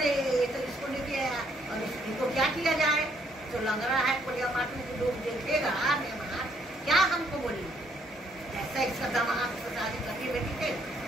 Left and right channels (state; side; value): normal; both; correlation 0.69